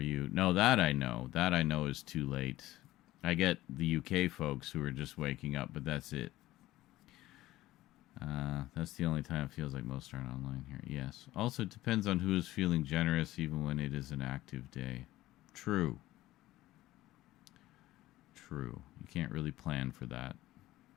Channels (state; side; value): quieter; right; 16.3 dB